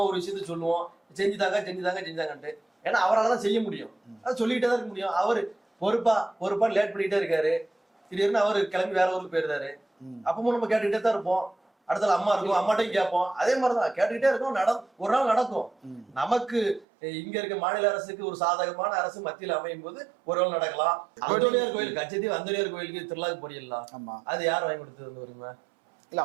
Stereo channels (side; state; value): left; drops out; at 16.9 s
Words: ஒரு விஷயத்த சொல்லுவோம், செஞ்சுதாங்கன்ட்டு. ஏன்னா அவரால் தான் செய்ய முடியும், அதை சொல்லிக்கிட்டே தான் இருக்க முடியும். அவரு பொறுப்பா லேட் பண்ணிட்டே இருக்காரு. திடீர்னு அவரு கிளம்பி வேற ஊருக்கு போயிருந்தாரு. அப்பவும் நம்ம கேட்டுக்கிட்டே தான் இருப்போம். அடுத்த அம்மா இருக்கும், அம்மாட்டையும் கேட்போம். அதே மாதிரிதான் கேட்டுக்கிட்டே இருக்கும். ஒரு நாள் நடக்கும். நமக்கு இங்க இருக்க மாநில அரசுக்கு ஒரு சாதகமான அரசு மத்தியில் அமையும் போது ஒரு நாள் நடக்கலாம். அந்தோனியார் கோயில், கச்சத்தீவு அந்தோனியார் கோயிலுக்கு திருவிழாக்கு போறீங்களா? அது யார் வாங்கி கொடுத்தது வருமா? இல்ல